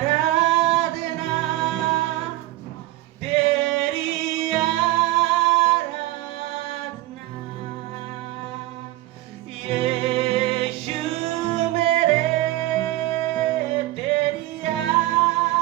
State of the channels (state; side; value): quieter; left; 17.1 dB